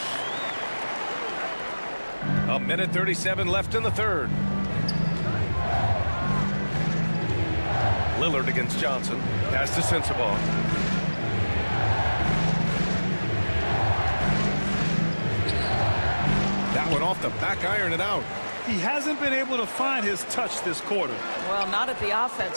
A minute 37 left in the third. Lillard against Johnson. Pass to Sensabaugh. That one off the back iron and out. He hasn't been able to find his touch this quarter. Well, not at the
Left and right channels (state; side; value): inverted; both; correlation -1.00